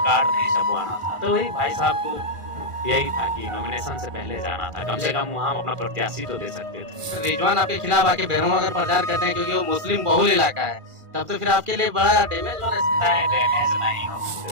कार्ड नहीं छपवाना था। तो वही भाई साहब को यही था कि नॉमिनेशन से पहले जाना था, कम से कम वहाँ अपना प्रत्याशी तो दे सकते थे। रिजवान आपके खिलाफ आके बेरहम अगर प्रचार करते हैं क्योंकि वो मुस्लिम बहुल इलाका है, तब तो फिर आपके लिए बड़ा डैमेज होना है। नहीं, डैमेज नहीं हो।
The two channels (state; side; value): late; left; 1.5 ms